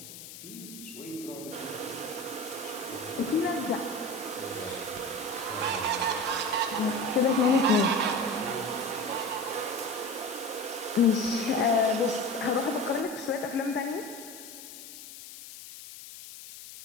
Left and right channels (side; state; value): left; noise; hiss, 14 dB below the sound